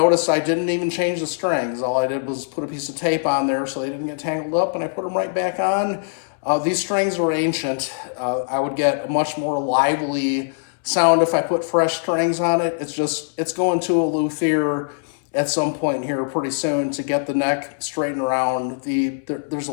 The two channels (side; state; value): right; silent; 62 dB below the other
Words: I didn't even change the strings. All I did was put a piece of tape on there so they didn't get tangled up, and I put them right back on. These strings are ancient. I would get a much more lively sound if I put fresh strings on it. It's going to a luthier at some point here pretty soon to get the neck straightened around. There's a